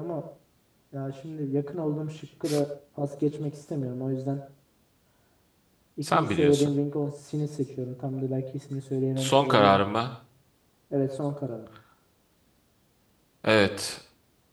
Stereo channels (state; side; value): identical; both; correlation 1.00